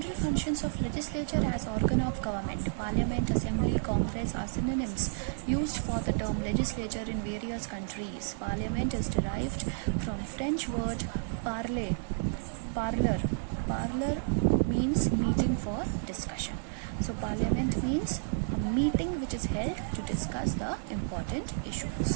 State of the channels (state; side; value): silent; left; 57 dB below the other